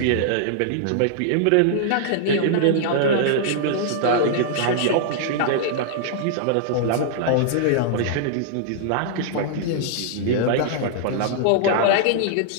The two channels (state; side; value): different; both; correlation -0.01